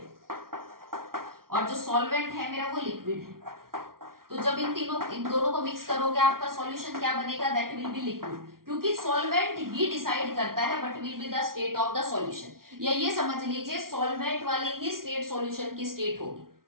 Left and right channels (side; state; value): left; late; 0.93 ms